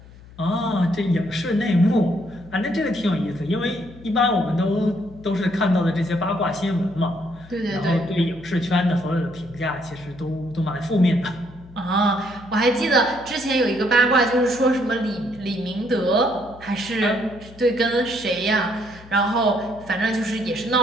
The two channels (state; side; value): noise; left; hum, 20 dB below the sound